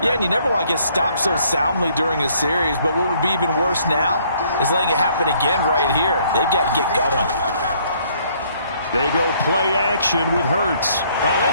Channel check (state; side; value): inverted; both; correlation -0.64